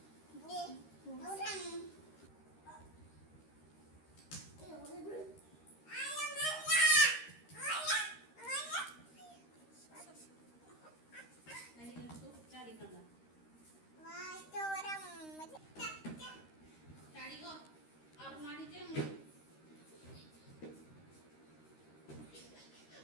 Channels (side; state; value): right; late; 13 ms